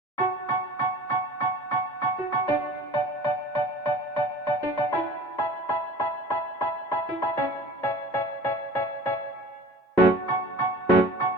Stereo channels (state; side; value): normal; both; correlation 0.42